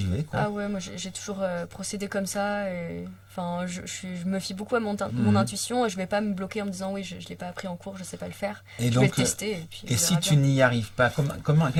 vais quoi. Ah ouais, moi j'ai toujours procédé comme ça. Et, enfin, je me fie beaucoup à mon Mhm. intuition et je vais pas me bloquer en me disant oui, je l'ai pas appris en cours, je sais pas le faire. Et Je vais donc, le tester et puis et on si verra tu bien. n'y arrives pas,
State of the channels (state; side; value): identical; both; correlation 1.00